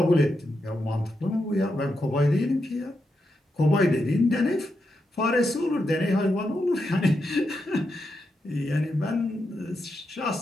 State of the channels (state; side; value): normal; both; correlation 0.85